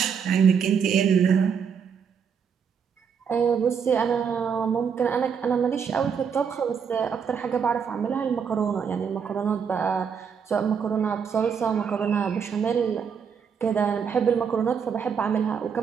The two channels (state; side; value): quieter; left; 6.8 dB